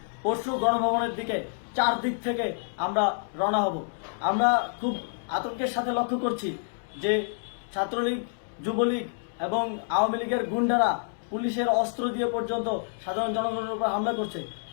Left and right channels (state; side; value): silent; right; digital silence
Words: পরশু গণভবনের দিকে 4 দিক থেকে আমরা রওনা হব। আমরা খুব আতঙ্কের সাথে লক্ষ্য করছি যে ছাত্রলীগ, যুবলীগ এবং আওয়ামী লীগের গুন্ডারা পুলিশের অস্ত্র দিয়ে পর্যন্ত সাধারণ জনগণের উপর হামলা করছে।